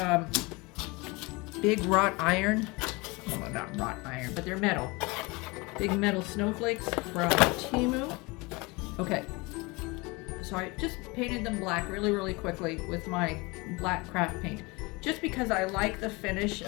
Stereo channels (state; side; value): quieter; right; 25.4 dB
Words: big wrought iron, well, not wrought iron, but they're metal, big metal snowflakes from Temu. Okay, so I just painted them black really, really quickly with my black craft paint, just because I like the finish